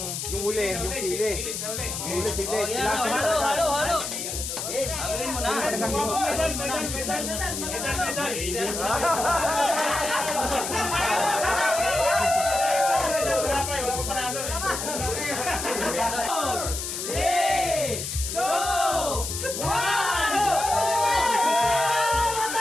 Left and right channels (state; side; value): noise; left; hiss, 5 dB below the sound